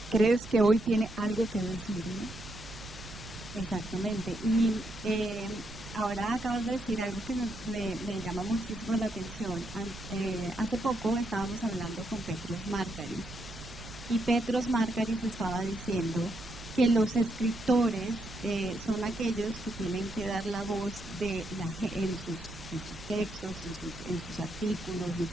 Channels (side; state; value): right; noise; rumble, 14 dB below the sound